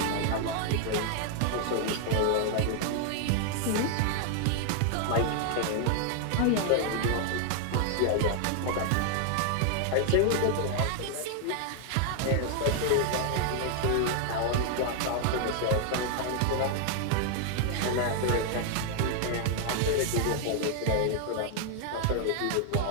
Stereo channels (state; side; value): different; both; correlation 0.00